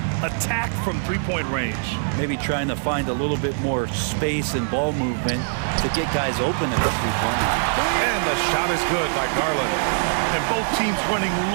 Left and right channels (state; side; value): silent; left; digital silence